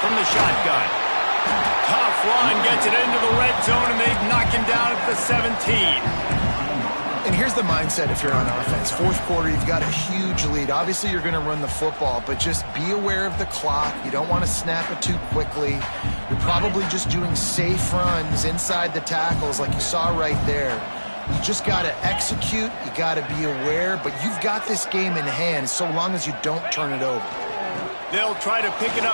from the shotgun. Tough run, gets it into the red zone, and they knock him down at the 17. And here's the mindset if you're on offense. 4th quarter, you've got a huge lead. Obviously, you're going to run the football, but just be aware of the clock. You don't want to snap it too quickly. You're probably just doing safe runs inside the tackles like you saw right there. You just got to execute. You got to be aware, but you've got this game in hand so long as you don't turn it over. They'll try to pick it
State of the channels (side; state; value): both; inverted; correlation -1.00